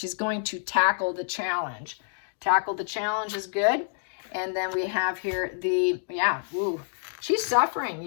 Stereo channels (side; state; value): right; silent; digital silence